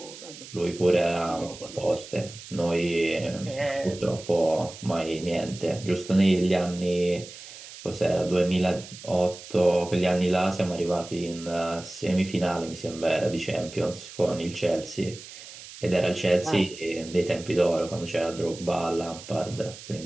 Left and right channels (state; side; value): noise; right; hiss, 15 dB below the sound